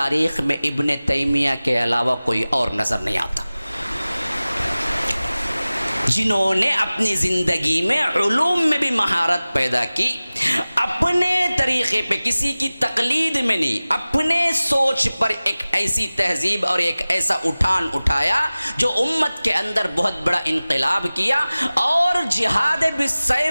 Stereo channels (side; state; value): both; inverted; correlation -0.98